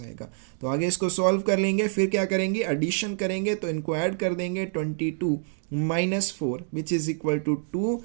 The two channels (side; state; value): left; silent; 59 dB below the other